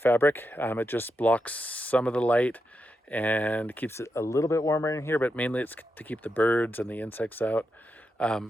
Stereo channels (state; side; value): normal; both; correlation 0.86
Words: It just blocks some of the light and keeps it a little bit warmer in here, but mainly it's to keep the birds and the insects out